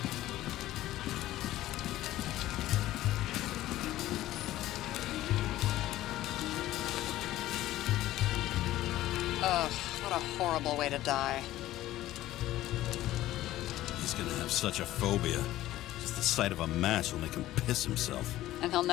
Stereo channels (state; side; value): quieter; right; 15.0 dB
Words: Ugh, what a horrible way to die. He's gonna have such a phobia. Just the sight of a match will make him piss himself. And he'll